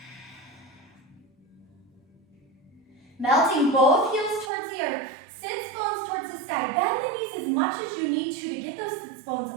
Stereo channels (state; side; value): drops out; left; at 4.5 s